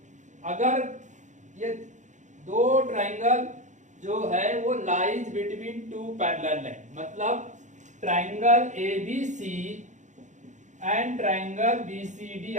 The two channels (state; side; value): late; left; 0.35 ms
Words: अगर ये दो ट्रायंगल जो है वो lies between two parallel line, मतलब triangle ABC and triangle BCD,